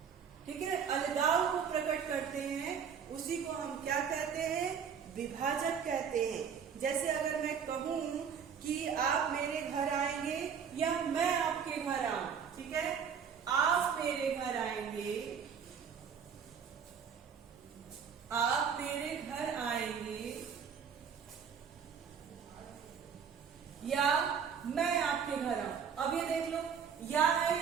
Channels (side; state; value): left; quieter; 7.2 dB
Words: ठीक है, अलगाव को प्रकट करते हैं, उसी को हम क्या कहते हैं, विभाजक कहते हैं। जैसे अगर मैं कहूं कि आप मेरे घर आएंगे या मैं आपके घर आऊं, ठीक है, आप मेरे घर आएंगे, आप मेरे घर आएंगे, या मैं आपके घर आऊं। अब ये देख लो, या है